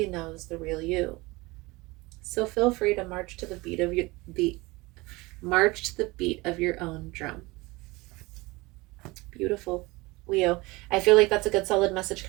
knows the real you. So feel free to march to the beat of your own drum. Beautiful. Leo, I feel like that's a good solid message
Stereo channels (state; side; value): quieter; left; 22.9 dB